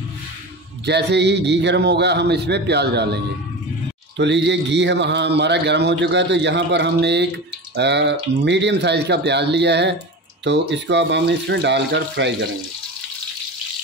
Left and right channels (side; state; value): both; normal; correlation 0.28